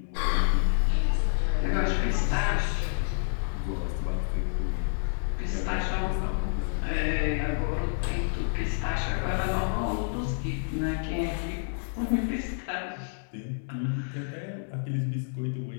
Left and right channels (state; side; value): silent; right; digital silence